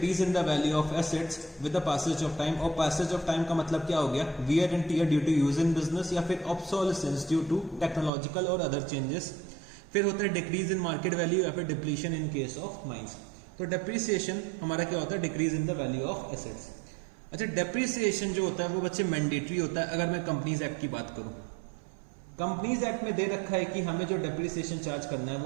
in the value of assets with the passage of time. और पैसेज ऑफ टाइम का मतलब क्या हो गया, wear and tear due to use in business, या फिर ऑब्सोलेसेंस ड्यू टू टेक्नोलॉजिकल और अदर चेंजेस। फिर होता है डिक्रीज इन मार्केट वैल्यू या फिर depletion in case of mines. तो डेप्रिसिएशन हमारा क्या होता है, decrease in the value of assets. अच्छा, डेप्रिसिएशन जो होता है वो बच्चे मैंडेटरी होता है। अगर मैं कंपनीज एक्ट की बात करूं, कंपनीज एक्ट में दे रखा है कि हमें जो डेप्रिसिएशन चार्ज करना है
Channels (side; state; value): left; drops out; at 8.1 s